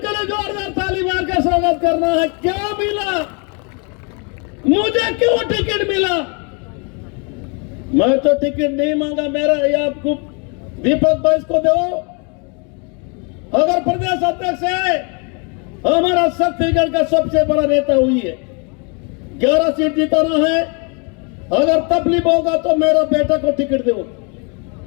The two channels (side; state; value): right; quieter; 34.8 dB